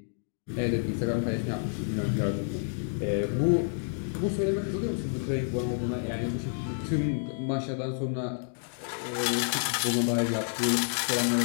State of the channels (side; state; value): right; silent; digital silence